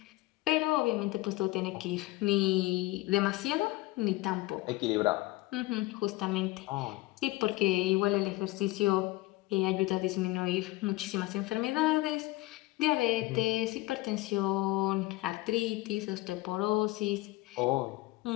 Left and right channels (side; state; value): right; quieter; 19.6 dB